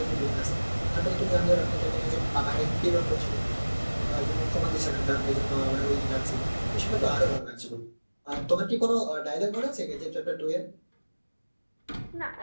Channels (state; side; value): inverted; both; correlation -1.00